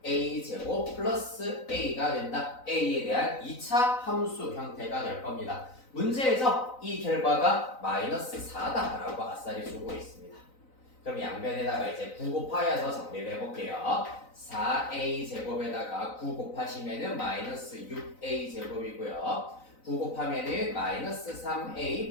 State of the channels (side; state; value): right; late; 3.9 ms